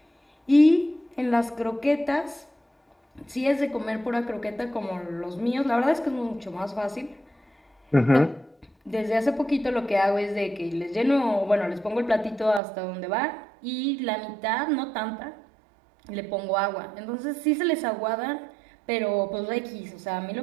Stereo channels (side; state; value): left; drops out; at 12.6 s